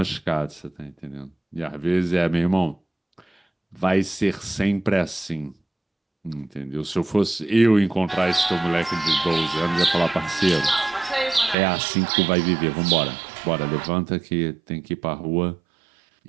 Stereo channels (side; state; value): left; drops out; at 11.6 s